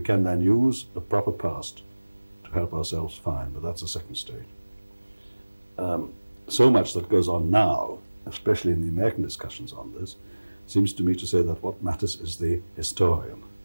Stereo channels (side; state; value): both; inverted; correlation -1.00